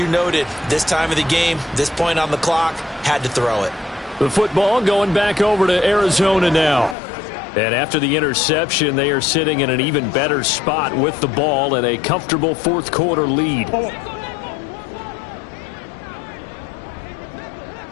noted, this time of the game, this point on the clock, had to throw it. The football going back over to Arizona now. And after the interception, they are sitting in an even better spot with the ball and a comfortable 4th quarter lead.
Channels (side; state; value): right; drops out; at 7.0 s